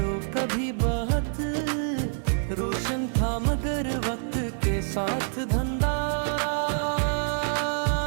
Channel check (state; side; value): silent; left; 56 dB below the other